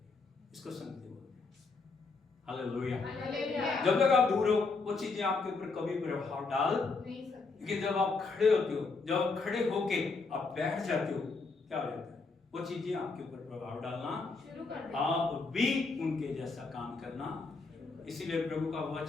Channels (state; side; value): quieter; right; 4.1 dB